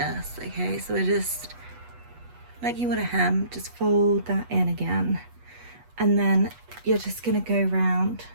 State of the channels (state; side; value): late; left; 8.2 ms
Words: Okay, so we're just, like you would a hem, just fold that in again. And then you're just going to go round